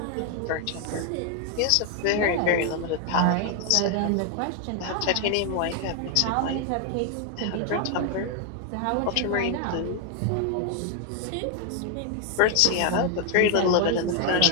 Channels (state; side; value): different; both; correlation 0.01